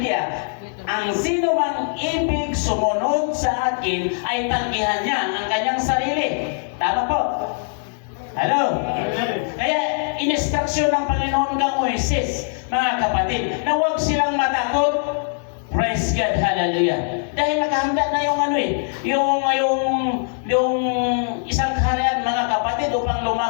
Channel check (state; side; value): silent; right; 65 dB below the other